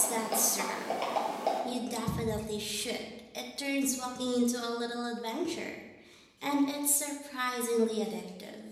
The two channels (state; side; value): identical; both; correlation 1.00